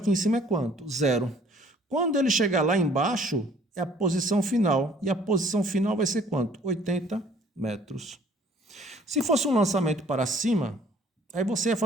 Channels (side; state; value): both; normal; correlation 0.56